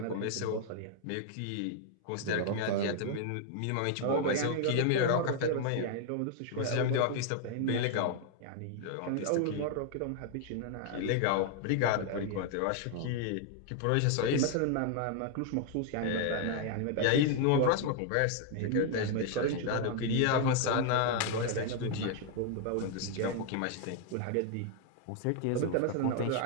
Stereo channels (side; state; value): both; different; correlation 0.00